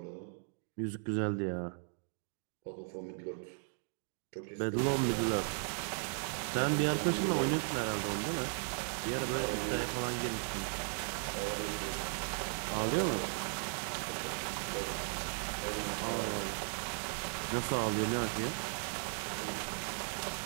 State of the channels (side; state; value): left; silent; 53 dB below the other